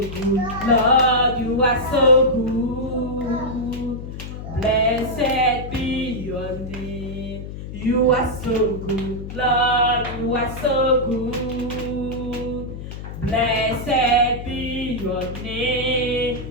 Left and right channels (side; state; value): left; noise; hum, 9 dB below the sound